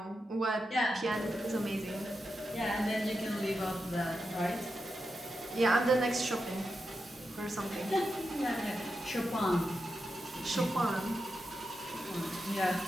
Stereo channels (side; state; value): both; normal; correlation 0.88